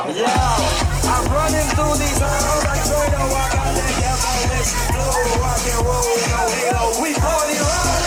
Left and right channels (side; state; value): both; identical; correlation 1.00